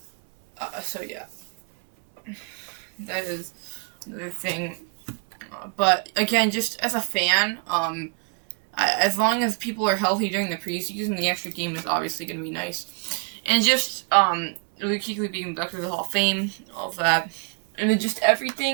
That is another thing. But again, just as a fan, as long as people are healthy during the preseason, the extra game is obviously going to be nice. And just Luke being inducted to the Hall of Fame, all of that, and then just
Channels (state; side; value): quieter; left; 35.2 dB